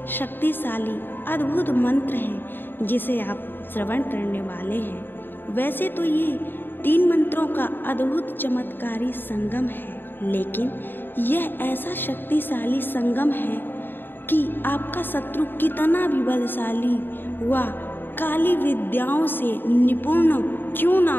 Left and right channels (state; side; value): late; right; 0.096 ms